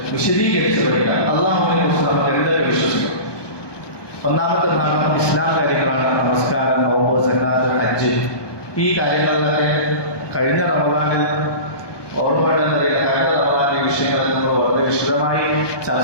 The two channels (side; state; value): right; late; 1.2 ms